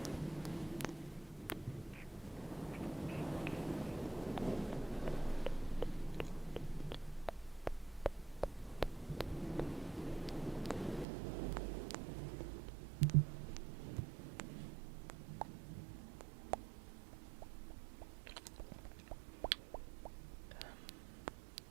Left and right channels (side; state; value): left; drops out; at 11.1 s